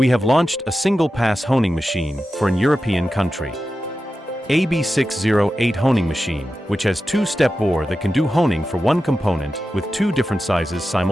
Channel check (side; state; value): both; normal; correlation 0.92